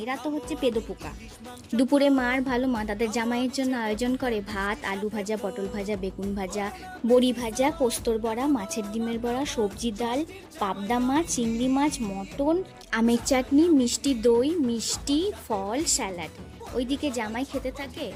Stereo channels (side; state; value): both; identical; correlation 1.00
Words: তো হচ্ছে পেদোপোকা। দুপুরে মার ভালো মা তাদের জামাইয়ের জন্য আয়োজন করে ভাত, আলু ভাজা, পটল ভাজা, বেগুন ভাজা, বড়ি ভাজা, পোস্তর বড়া, মাছের ডিমের বড়া, সবজি ডাল, পাবদা মাছ, চিংড়ি মাছ, মটন, আমের চাটনি, মিষ্টি দই, মিষ্টি ফল, স্যালাড। ওইদিকে জামাই খেতে থাকে